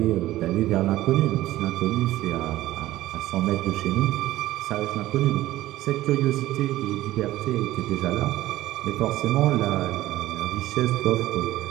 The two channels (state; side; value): quieter; left; 15.8 dB